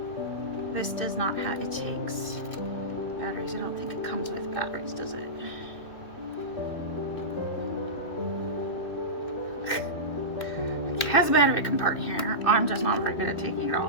This does not have, it takes batteries. I don't think it comes with batteries, does it? It has a battery compartment here. I'm just not very good at taking it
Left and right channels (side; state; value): right; late; 2.6 ms